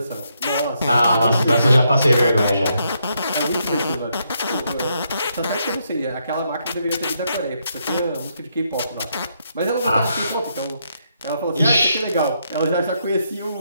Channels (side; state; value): both; inverted; correlation -0.77